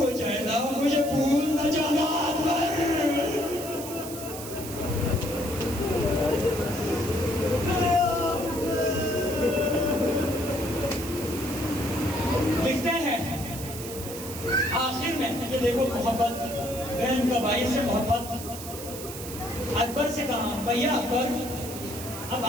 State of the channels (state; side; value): noise; right; hiss, 11 dB below the sound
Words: جائے نا مجھے بھول نہ جانا اکبر. لکھتے ہیں آخر میں کہ دیکھو محبت، بہن کا بھائی سے محبت. اکبر سے کہا بھیا اکبر اب